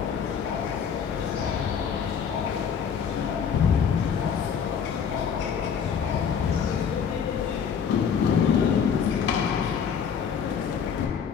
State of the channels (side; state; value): right; quieter; 7.2 dB